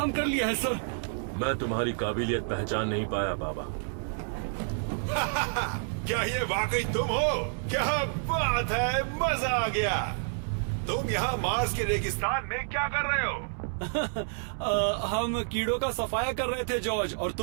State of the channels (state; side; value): silent; left; 58 dB below the other